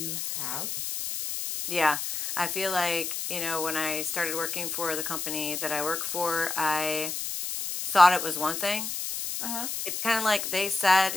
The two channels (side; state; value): left; noise; hiss, 4 dB below the sound